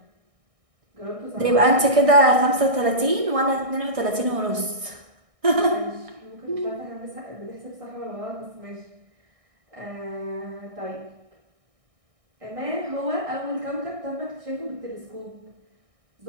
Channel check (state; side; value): late; left; 1.6 ms